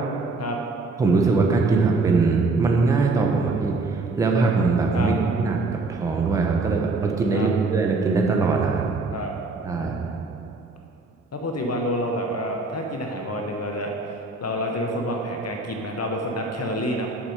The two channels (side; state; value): left; quieter; 3.3 dB